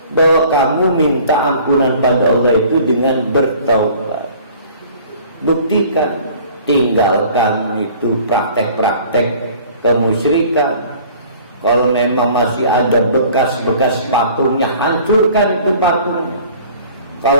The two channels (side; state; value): both; inverted; correlation -0.50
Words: bahwa kamu minta ampunan pada Allah itu dengan bertaubat. Buktikan. Tinggalkan itu praktek-praktek kemusyrikan. Kalau memang masih ada bekas-bekas patungnya, hancurkan itu patungnya.